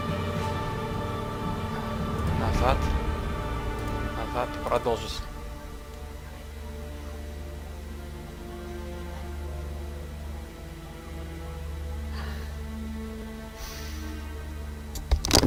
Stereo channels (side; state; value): both; identical; correlation 1.00